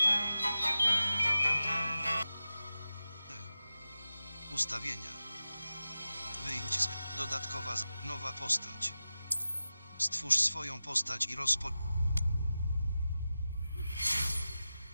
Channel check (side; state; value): both; inverted; correlation -0.94